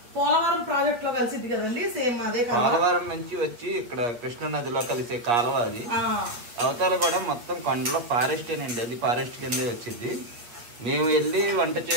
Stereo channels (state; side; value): late; left; 8.6 ms